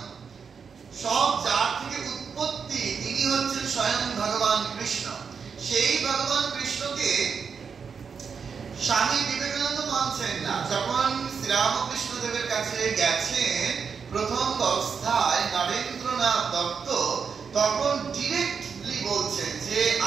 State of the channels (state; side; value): quieter; left; 6.1 dB